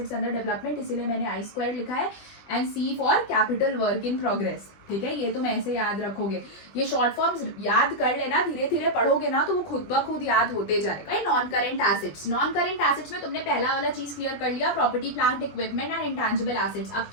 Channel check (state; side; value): late; right; 20 ms